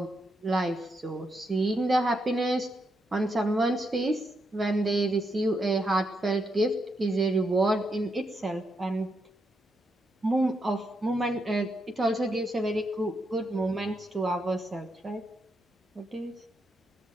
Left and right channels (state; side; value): normal; both; correlation 0.81